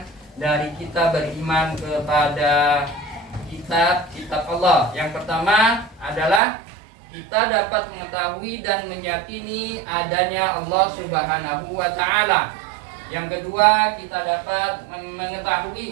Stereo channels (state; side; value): drops out; left; at 6.4 s